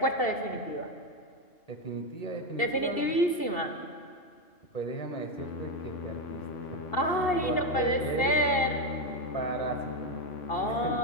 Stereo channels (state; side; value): late; right; 2.7 ms